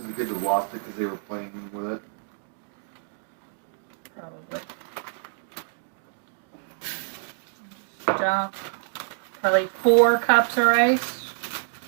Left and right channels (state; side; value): silent; left; digital silence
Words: it good to lost it because they were playing with it? probably. Dump probably 4 cups of rice.